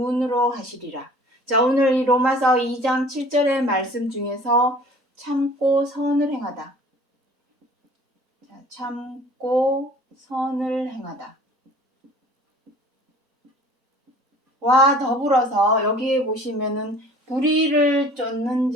하시리라. 자, 오늘 이 로마서 2장 7절의 말씀 중에서 참고 선을 행하다. 자, 참고 선을 행하다. 와 더불어서 여기에 보시면은 불의를 쫓는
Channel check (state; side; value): normal; both; correlation 0.48